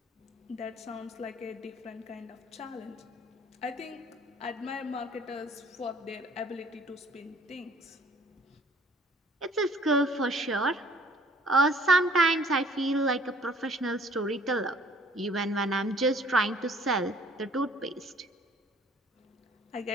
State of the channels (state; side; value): normal; both; correlation 0.56